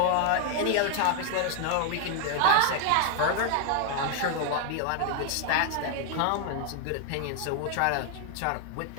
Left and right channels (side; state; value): both; different; correlation 0.00